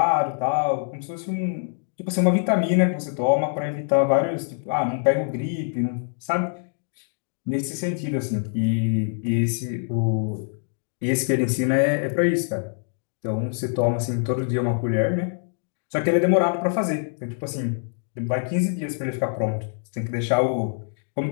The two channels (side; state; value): right; silent; digital silence